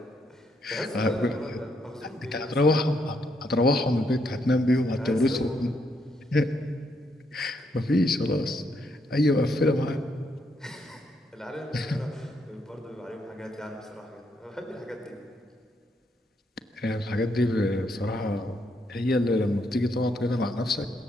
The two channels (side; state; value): both; normal; correlation 0.76